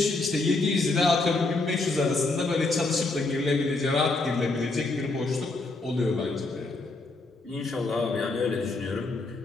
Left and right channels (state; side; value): quieter; right; 3.4 dB